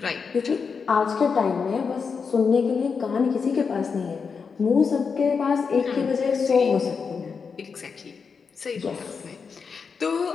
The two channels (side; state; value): right; quieter; 5.6 dB